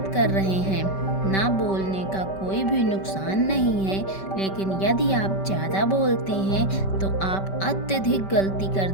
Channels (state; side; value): late; right; 5.2 ms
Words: कर रहे हैं। ना बोलने का कोई भी नुकसान नहीं है, लेकिन यदि आप ज़्यादा बोलते हैं तो आप अत्यधिक गलती कर